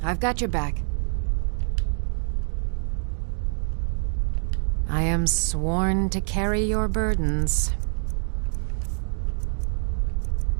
I've got your back. I am sworn to carry your burdens.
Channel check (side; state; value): left; silent; 60 dB below the other